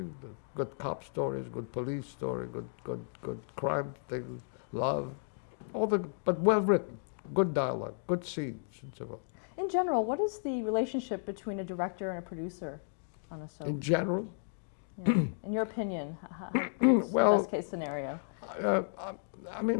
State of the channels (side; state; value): right; silent; digital silence